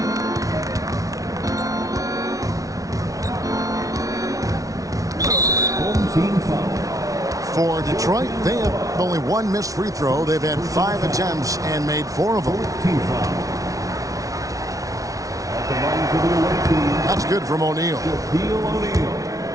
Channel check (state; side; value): late; left; 0.17 ms